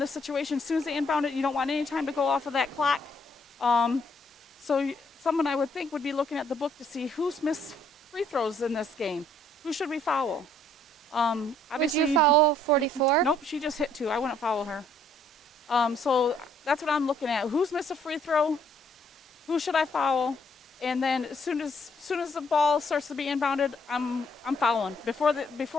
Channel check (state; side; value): normal; both; correlation 0.66